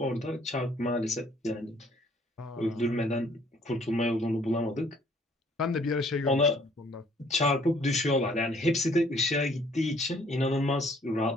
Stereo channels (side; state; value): both; normal; correlation 0.61